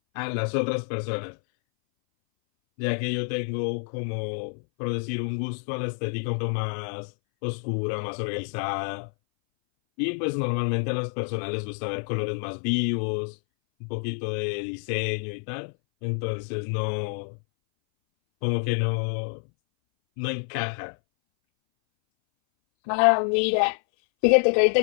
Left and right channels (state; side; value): silent; right; 58 dB below the other